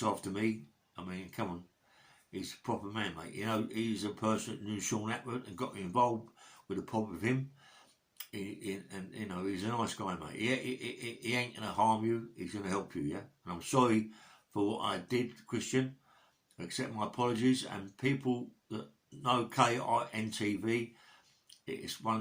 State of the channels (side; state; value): both; identical; correlation 1.00